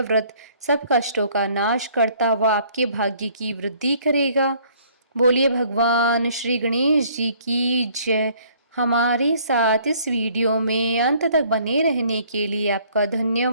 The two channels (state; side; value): inverted; both; correlation -0.59